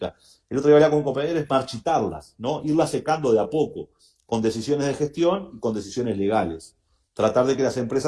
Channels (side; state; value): both; identical; correlation 1.00